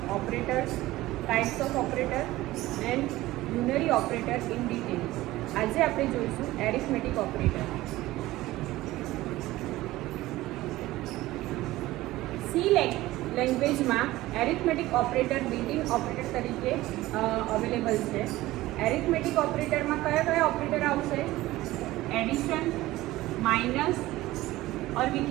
operators, types of operator and unary operator in detail. આજે આપણે જોઈશું arithmetic operator. C લેંગ્વેજમાં arithmetic operator built-in operator તરીકે available છે. arithmetic operatorમાં કયા ઓપરેટર આવશે? Addition, minus, or we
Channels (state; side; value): quieter; left; 17.3 dB